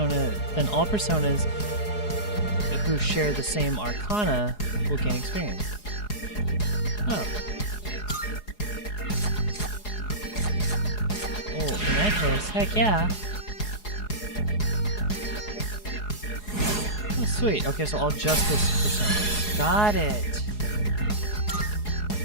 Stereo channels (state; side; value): late; right; 4.8 ms